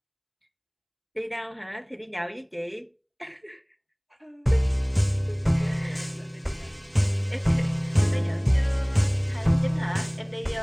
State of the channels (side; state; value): both; identical; correlation 1.00